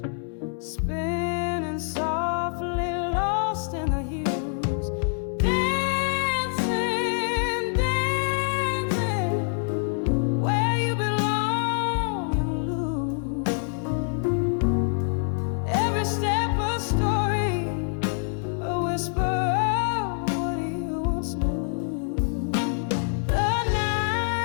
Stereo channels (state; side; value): silent; right; 61 dB below the other